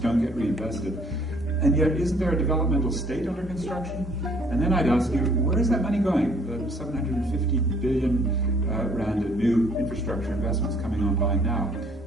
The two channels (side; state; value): both; normal; correlation 0.60